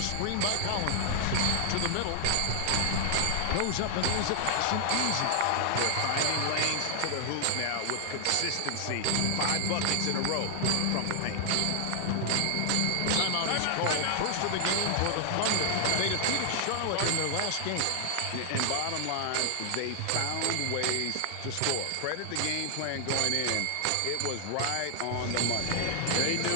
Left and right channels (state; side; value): different; both; correlation 0.00